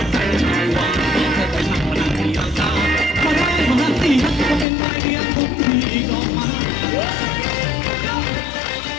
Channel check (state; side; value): drops out; right; at 4.7 s